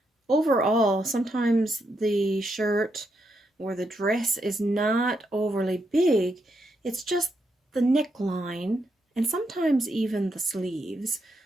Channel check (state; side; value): normal; both; correlation 0.80